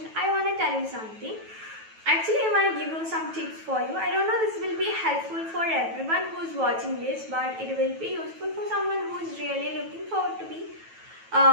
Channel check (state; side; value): late; left; 9.2 ms